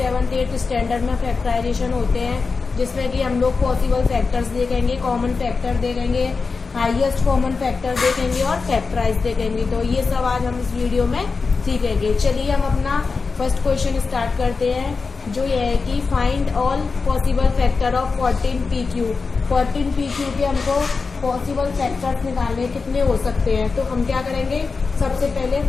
8th standard में फैक्टराइजेशन होते हैं, जिसमें कि हम लोग पॉसिबल फैक्टर्स देखेंगे, कॉमन फैक्टर देखेंगे, हाईएस्ट कॉमन फैक्टर देखेंगे और फैक्टराइज देखेंगे। तो ये सब आज हम इस वीडियो में सीखेंगे। चलिए हम अपना फर्स्ट क्वेश्चन स्टार्ट करते हैं, जो ये है कि find all possible factor of 14pq। 14pq के हमको पॉसिबल फैक्टर्स निकालने कितने हो सकते हैं। तो हम क्या करेंगे, सबसे पहले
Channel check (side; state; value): right; quieter; 4.5 dB